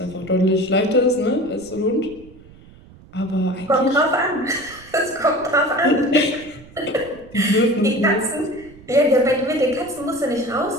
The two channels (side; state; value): right; noise; rumble, 22 dB below the sound